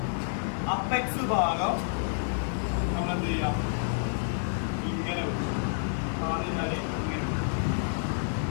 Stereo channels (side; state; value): right; silent; digital silence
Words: അപ്പെക്സ് ഭാഗം നമ്മൾ എന്ത് ചെയ്യാം, ഇങ്ങനെ ഇങ്ങനെ